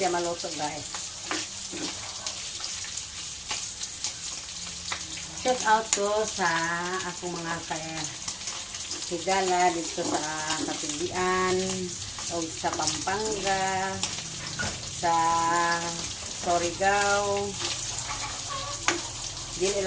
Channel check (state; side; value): identical; both; correlation 1.00